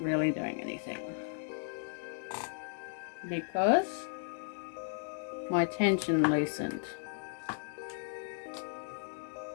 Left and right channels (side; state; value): right; silent; digital silence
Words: doing anything, because my tension loosened.